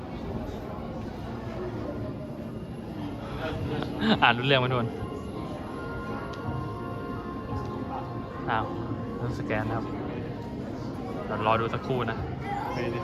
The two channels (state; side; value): identical; both; correlation 1.00